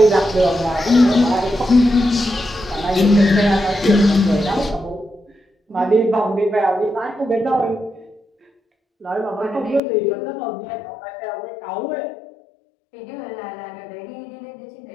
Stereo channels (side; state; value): right; drops out; at 9.8 s